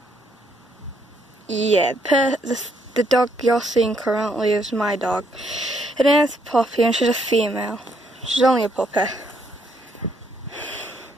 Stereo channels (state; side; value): normal; both; correlation 0.72